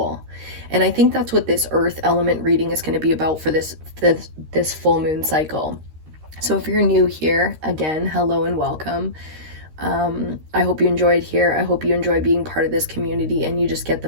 And I think that's what this earth element reading is going to be about for this full moon cycle. So if you're new here, again, hello and welcome. I hope you enjoyed here. I hope you enjoy being part of this community and you just get the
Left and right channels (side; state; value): left; late; 13 ms